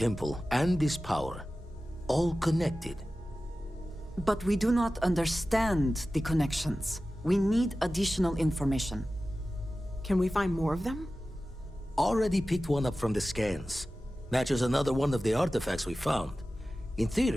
and this power. All connected. But we do not understand the connections. We need additional information. Can we find more of them? Already picked one up from the scans. Matches another one of the artifacts we found. In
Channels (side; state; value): both; normal; correlation 0.95